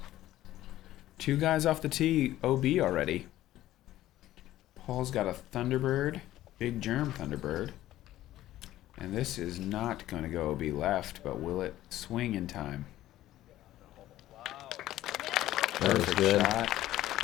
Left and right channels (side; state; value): right; quieter; 14.4 dB